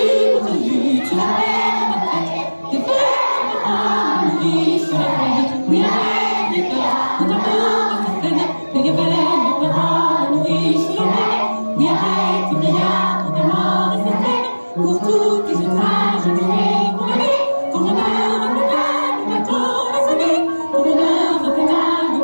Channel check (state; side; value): inverted; both; correlation -1.00